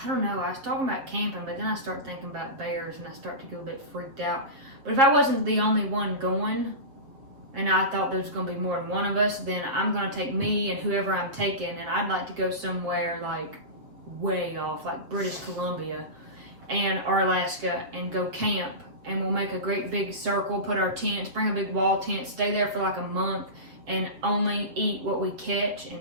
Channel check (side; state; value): left; late; 7.5 ms